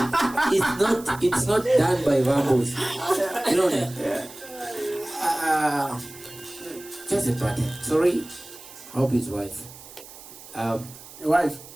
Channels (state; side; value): noise; right; hiss, 18 dB below the sound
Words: It's not done by Vambos. You know that? Just a party. Sorry. Hope his wife. Wife?